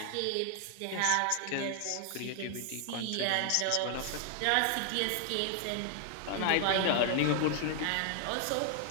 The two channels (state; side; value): different; both; correlation 0.00